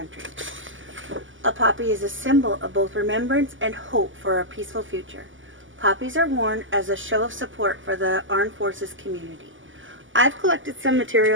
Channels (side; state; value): left; late; 0.57 ms